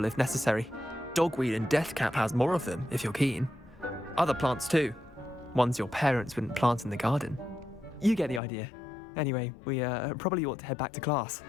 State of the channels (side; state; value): right; drops out; at 8.4 s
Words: if necessary. Dogweed and deathcap has more of them, if you're keen. Other plants too. Ones your parents wouldn't plant in the garden. You get the idea. Anyway, we probably ought to head back to class.